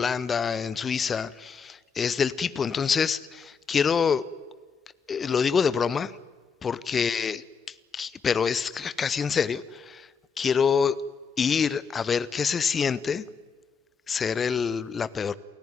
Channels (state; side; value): quieter; right; 6.1 dB